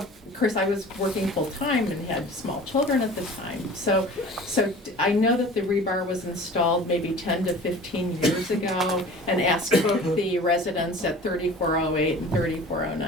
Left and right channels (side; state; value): both; normal; correlation 0.42